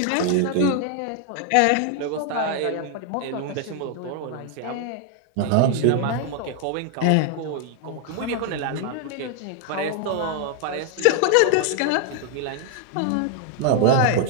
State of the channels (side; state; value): both; different; correlation 0.00